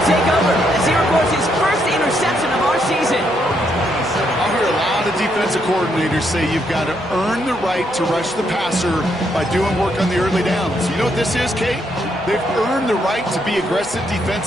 take over as he records his first interception of our season. I hear a lot of defensive coordinators say you've got to earn the right to rush the passer by doing work on the early downs. You know what this is, Kate? They've earned the right to be aggressive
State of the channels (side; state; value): both; normal; correlation 0.76